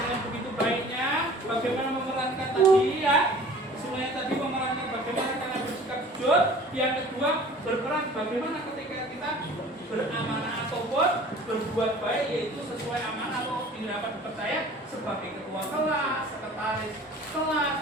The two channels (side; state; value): both; normal; correlation 0.46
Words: begitu baiknya. Bagaimana memerankan tadi ya? Semuanya tadi memerankan bagaimana kalian bersikap jujur. Yang kedua, berperan bagaimana ketika kita beramanah ataupun berbuat baik, yaitu sesuai amanah atau dapat dipercaya sebagai ketua kelas, sekretaris